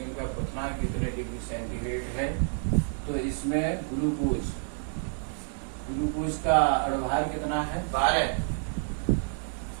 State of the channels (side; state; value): left; silent; 58 dB below the other